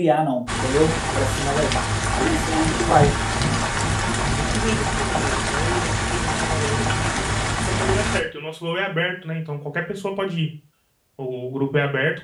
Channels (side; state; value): both; identical; correlation 1.00